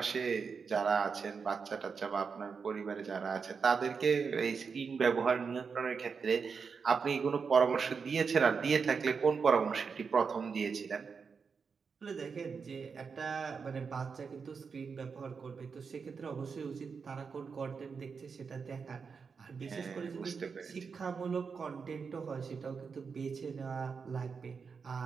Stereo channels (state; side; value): quieter; left; 5.6 dB